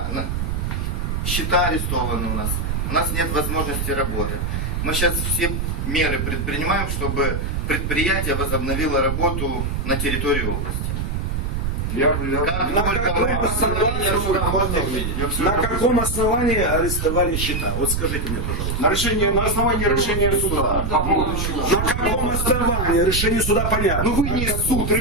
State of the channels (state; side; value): noise; right; rumble, 1 dB below the sound